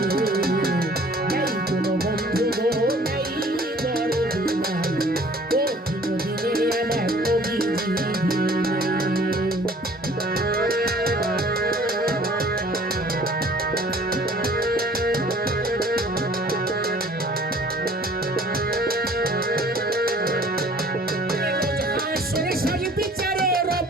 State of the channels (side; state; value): both; normal; correlation 0.53